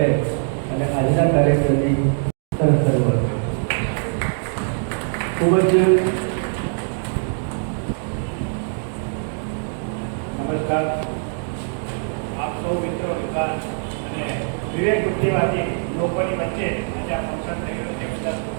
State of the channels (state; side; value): silent; left; 63 dB below the other